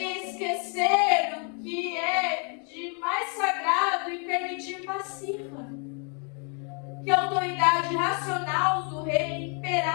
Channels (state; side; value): quieter; right; 38.9 dB